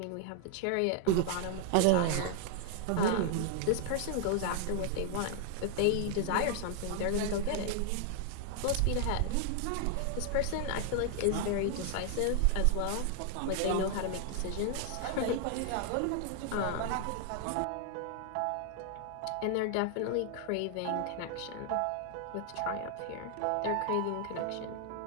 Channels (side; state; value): both; different; correlation 0.00